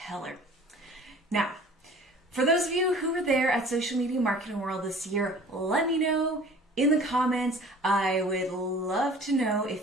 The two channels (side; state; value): both; normal; correlation 0.47